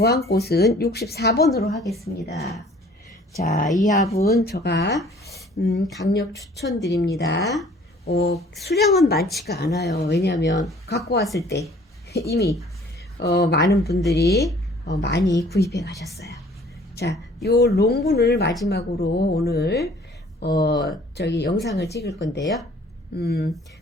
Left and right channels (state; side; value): normal; both; correlation 0.54